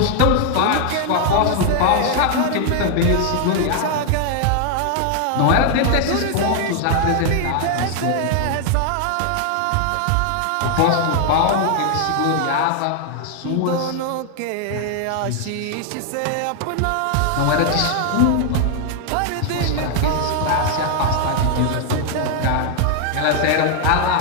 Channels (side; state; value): both; different; correlation 0.00